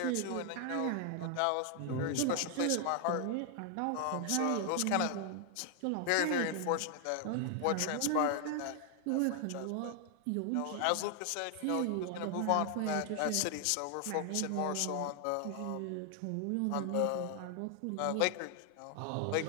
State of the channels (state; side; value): different; both; correlation 0.00